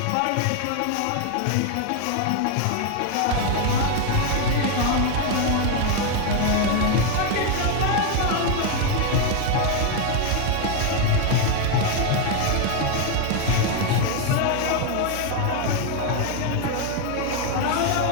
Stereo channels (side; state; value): both; different; correlation 0.01